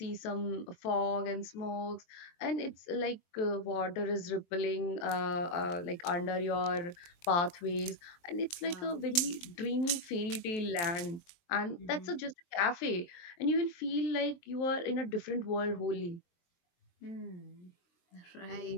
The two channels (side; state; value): right; late; 22 ms